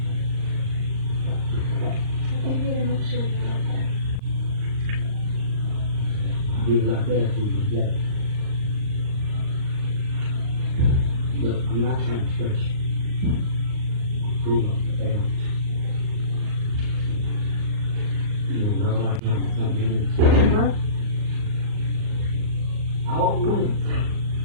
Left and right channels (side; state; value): left; late; 39 ms